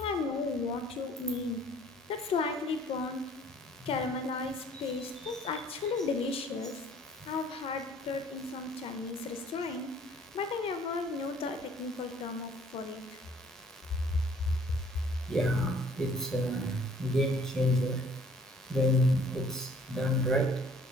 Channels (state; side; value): normal; both; correlation 0.56